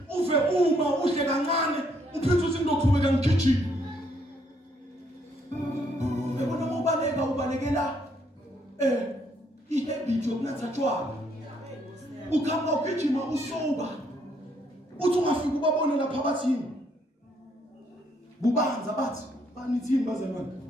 uve uma uhle kancane, uphethe uthi ngizoqhubeka ngigijima. Yabona mawubaleka ubalekela ihabit yokunatha tshwala. Ukhamba ugijima usoba. Uthi ungafika ubabone lapha bathini. Bubanza bathi banithini bazalwane.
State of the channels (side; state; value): both; normal; correlation 0.70